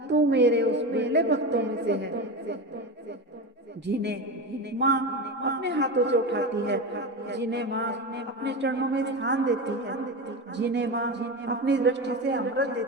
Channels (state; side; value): normal; both; correlation 0.22